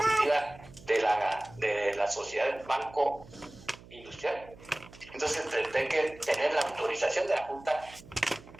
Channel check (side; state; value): right; noise; hum, 20 dB below the sound